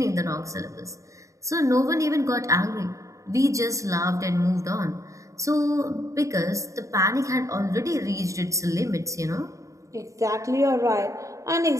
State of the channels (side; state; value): left; late; 0.15 ms